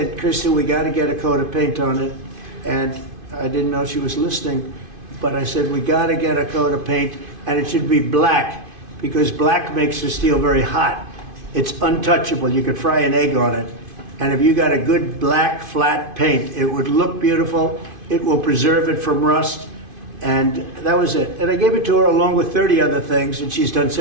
Kristen, we got to get a coat of paint on it. And I didn't know she was listening, but I said, we got to get a coat of paint, and it should be black, because black makes the steel very hot. It's untouchable. You could fry an egg on it. And if you got a good black, flat paint, it would look beautiful. It will preserve it from rust. And that was it. And I gave it to her along with 30 other things, and she's done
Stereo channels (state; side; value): late; left; 2.5 ms